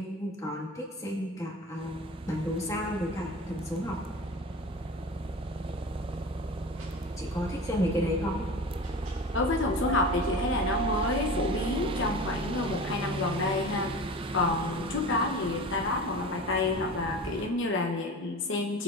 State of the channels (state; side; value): normal; both; correlation 0.34